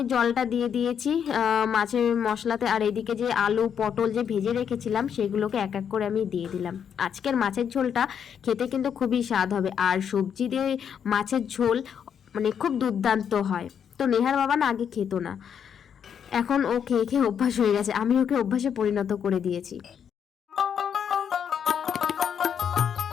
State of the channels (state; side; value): quieter; right; 8.0 dB